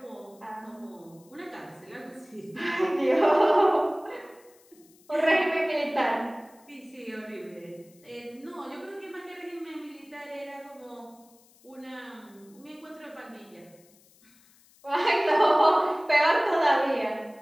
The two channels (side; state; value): left; noise; hiss, 29 dB below the sound